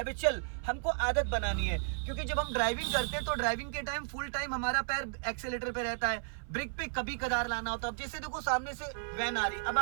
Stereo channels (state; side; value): silent; left; 55 dB below the other